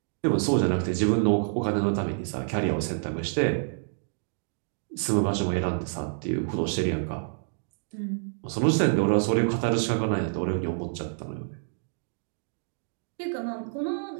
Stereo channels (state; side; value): silent; left; digital silence